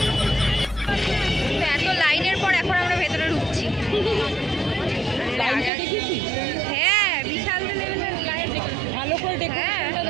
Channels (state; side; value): drops out; left; at 5.7 s